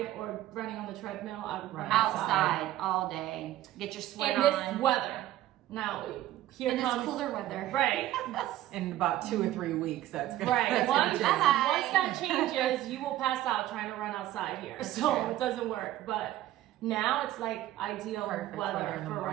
or running on the treadmill, I would run outside all day. Get your sweat in this on. weather. Now here In this comes cooler weather. right, In about 2 or 3 weeks, that's gonna. right. That's Once, gonna change. Bye. once that changes, you will pass out trying to run outside here. So true. it doesn't work. But now it's like ideal Perfect weather weather in the for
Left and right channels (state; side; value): quieter; left; 14.2 dB